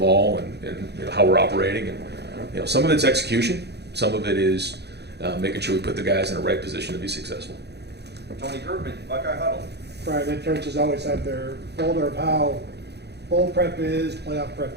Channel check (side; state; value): left; late; 0.49 ms